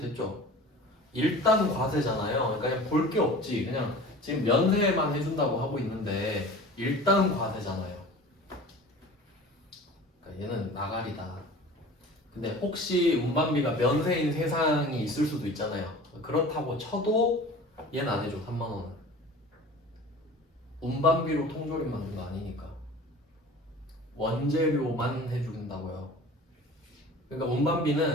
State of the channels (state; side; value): normal; both; correlation 0.40